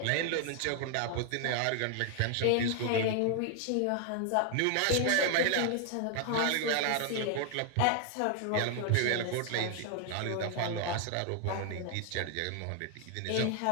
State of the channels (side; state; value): both; different; correlation 0.00